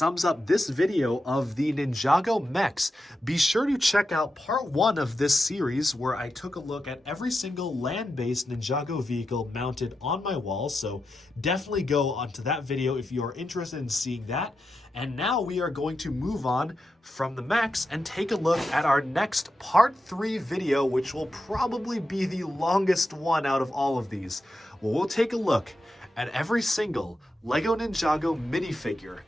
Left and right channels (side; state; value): both; normal; correlation 0.88